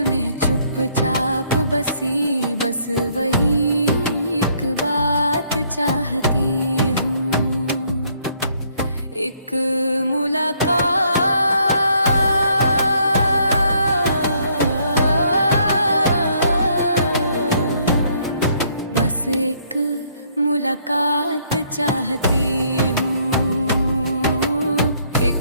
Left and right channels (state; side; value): inverted; both; correlation -0.67